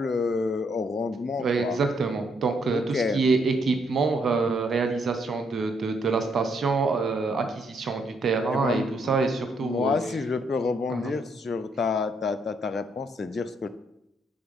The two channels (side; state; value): both; normal; correlation 0.73